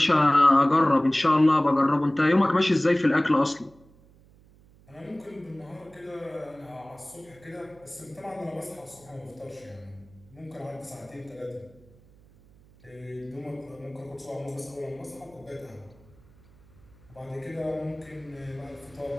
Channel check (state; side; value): noise; right; hum, 27 dB below the sound